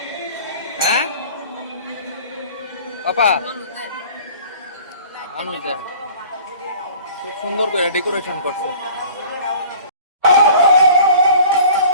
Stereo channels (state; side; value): inverted; both; correlation -0.46